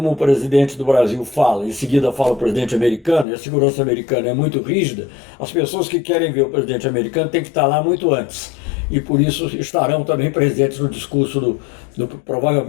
o presidente do Brasil fala, em seguida fala o presidente americano, e a segurança americana é muito rígida, as pessoas que querem ver o presidente americano têm que estar lá muito antes. E por isso estarão também presentes no discurso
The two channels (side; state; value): right; drops out; at 3.2 s